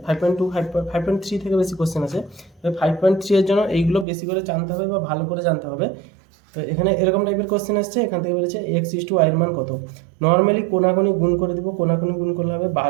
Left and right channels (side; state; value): left; drops out; at 4.0 s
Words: 5.2 5.3 থেকে বেশি কোশ্চেন আসে। 5.3 এর জন্য এইগুলো বেশি করে জানতে হবে বা ভালো করে জানতে হবে। তো এখানে এরকম টাইপের কোশ্চেন আসছে, এখান থেকে বলেছে x/y এর মান কত। নর্মালি কোনাকুনি গুণ করে দিব, কোনাকুনি গুণ করলে হবে